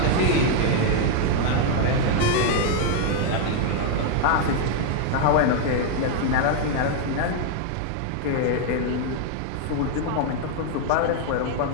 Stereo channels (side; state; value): both; different; correlation 0.00